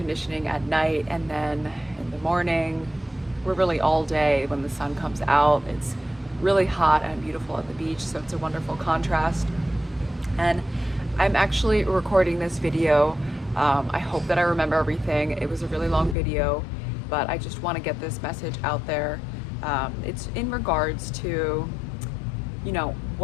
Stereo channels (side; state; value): right; drops out; at 16.2 s